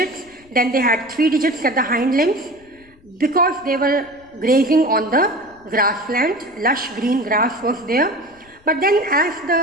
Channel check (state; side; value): noise; left; rumble, 29 dB below the sound